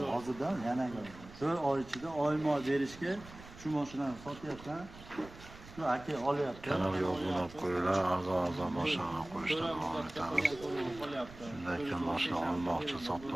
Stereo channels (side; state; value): right; noise; rumble, 17 dB below the sound